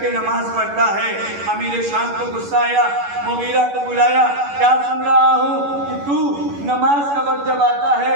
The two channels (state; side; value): late; left; 11 ms